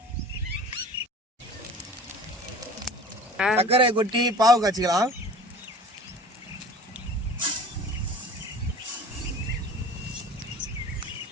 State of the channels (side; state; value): both; normal; correlation 0.41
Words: சர்க்கரை கொட்டி பாவு காய்ச்சிக்கலாம்.